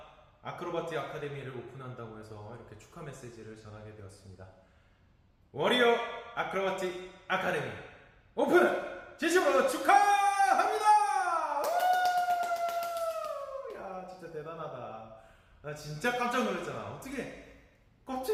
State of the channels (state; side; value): identical; both; correlation 1.00